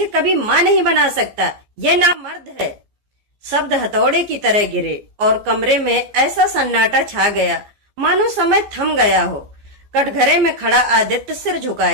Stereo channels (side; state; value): left; late; 15 ms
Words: कभी मां नहीं बना सकता, यह नामर्द है। शब्द हथौड़े की तरह गिरे और कमरे में ऐसा सन्नाटा छा गया मानो समय थम गया हो। कटघरे में खड़ा आदित्य सिर